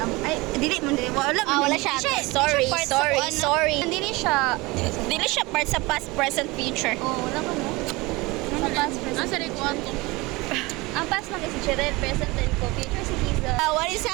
ay, dili mo, dili. Wala, Wala siya. Sorry, sorry. Dili siya. Dili siya part sa past, present, future. Oh, wala ka mo. Sa past, present. Asa rin kwanto? Ang past lang kasi Cheryl, present, and future si Kiza. What is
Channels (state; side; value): quieter; left; 23.0 dB